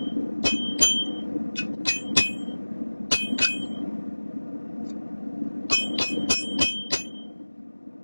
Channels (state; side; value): inverted; both; correlation -1.00